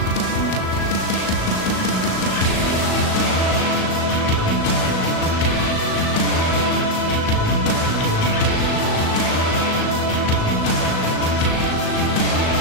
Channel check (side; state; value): right; late; 37 ms